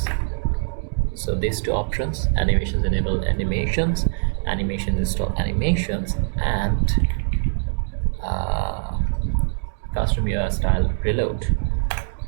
So these two options, animations enable animations, animation install animations, and custom UI style reload.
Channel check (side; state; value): left; silent; digital silence